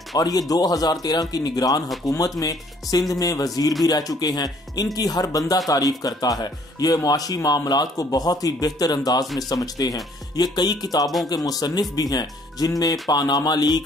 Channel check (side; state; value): both; normal; correlation 0.61